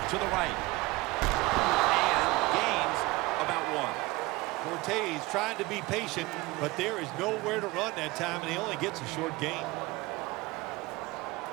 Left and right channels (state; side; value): quieter; left; 21.5 dB